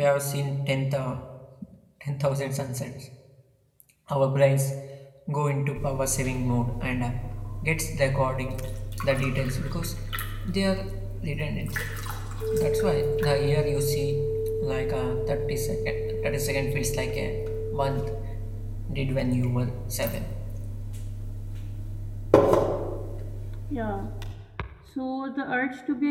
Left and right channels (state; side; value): identical; both; correlation 1.00